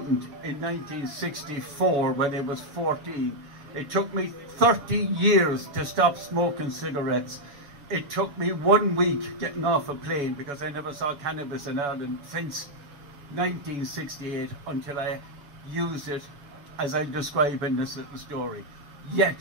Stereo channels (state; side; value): late; left; 7.0 ms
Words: in 1964 when I was 14. It took me 30 years to stop smoking cigarettes. It took me 1 week getting off a plane because I never saw cannabis in Ireland since 1968 until I used it as I describe in this little story. Yet,